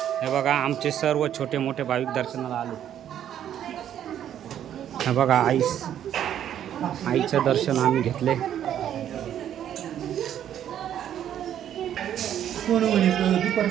हे बघा आमचे सर्व छोटे मोठे भाविक दर्शनाला आले. हे बघा आईचं दर्शन आम्ही घेतले.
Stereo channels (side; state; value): left; quieter; 10.3 dB